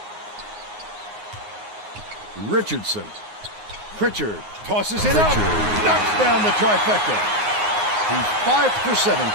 Richardson. Pritchard tosses it up. Knocks down the trifecta. He's 5 for 7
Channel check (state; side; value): late; left; 9.6 ms